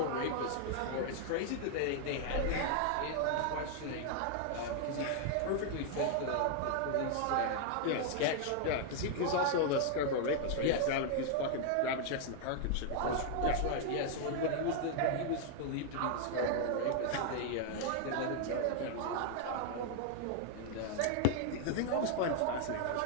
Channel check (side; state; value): both; different; correlation 0.00